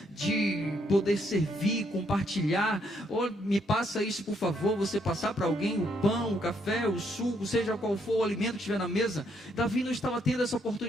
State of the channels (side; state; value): both; normal; correlation 0.73